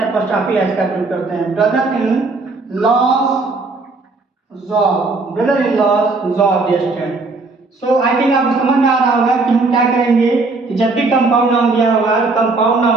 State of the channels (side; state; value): left; quieter; 3.6 dB